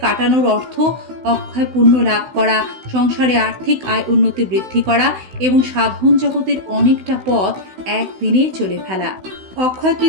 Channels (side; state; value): left; late; 16 ms